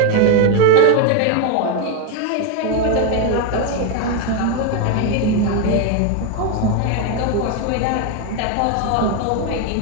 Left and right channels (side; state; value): both; different; correlation 0.01